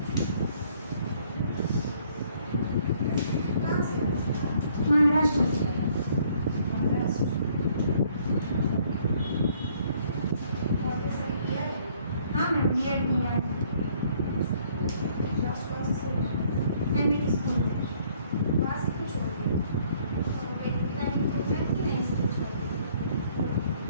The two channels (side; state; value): both; inverted; correlation -0.63